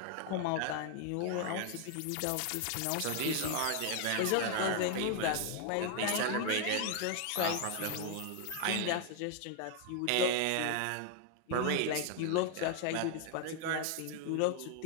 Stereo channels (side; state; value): both; different; correlation 0.00